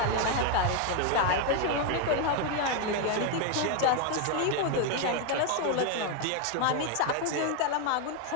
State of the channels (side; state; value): both; different; correlation 0.01